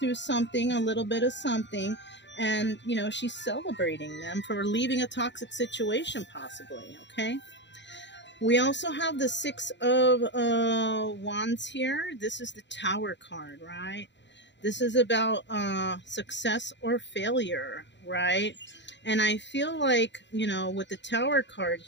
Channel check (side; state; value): right; late; 0.52 ms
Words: something, a little bit of something, and she's celebrating them for leaving a toxic situation, possibly. Okay, we also have the Six of Wands here. This is the Tower card, right? This is about success or failure, right? And I feel like, with the Tower card